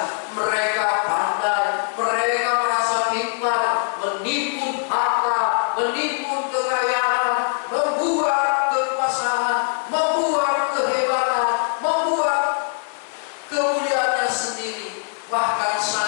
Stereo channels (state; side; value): silent; right; 64 dB below the other